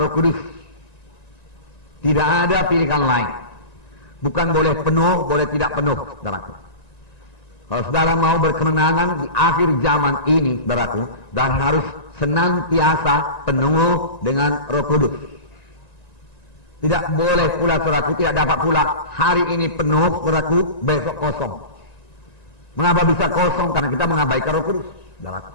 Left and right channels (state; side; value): late; right; 1.9 ms